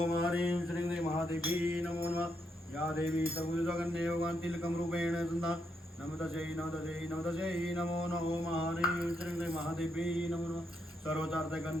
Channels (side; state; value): both; normal; correlation 0.79